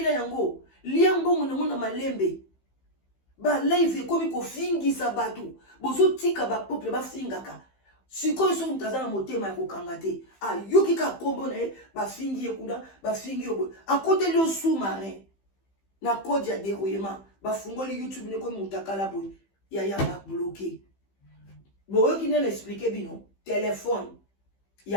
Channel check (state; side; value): late; right; 15 ms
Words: yango liambo na malembe ba live komi kofingisa batu bozo tika ba peuple ba fingaka sikoyo so mutaza na motema ya kokanga te ayoki ka kombo na ye bafingi ye kuna bafingi yo akoteli yo sous-marin na code ya dérouillement bafungoli YouTube ne ko mutakala boy ya ba bloqué boyoki nene expliquer bino téléphone